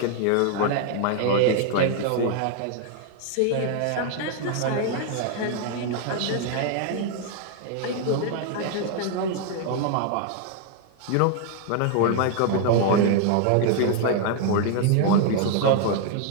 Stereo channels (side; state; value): both; different; correlation 0.00